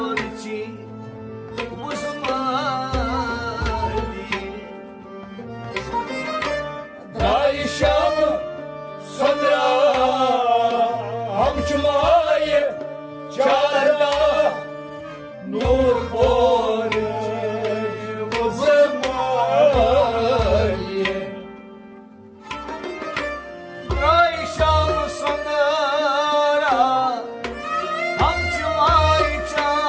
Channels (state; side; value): identical; both; correlation 1.00